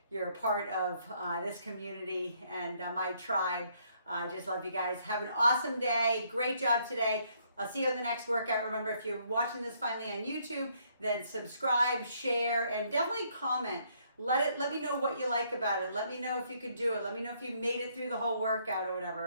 you're a part of this community and my tribe. I just love you guys. Have an awesome day. Great job today. I'll see you on the next workout. Remember, if you're watching this finally on YouTube, then subscribe, share, and definitely comment. Let me know what you like about it. Let me know if you could do it. Let me know if you made it through the whole workout or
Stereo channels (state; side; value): inverted; both; correlation -0.69